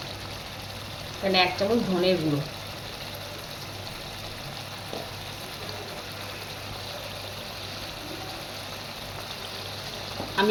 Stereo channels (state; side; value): identical; both; correlation 1.00